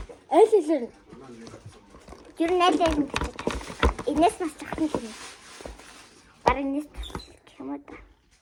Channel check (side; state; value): both; identical; correlation 1.00